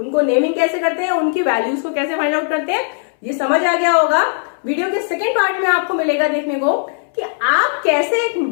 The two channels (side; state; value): right; silent; 67 dB below the other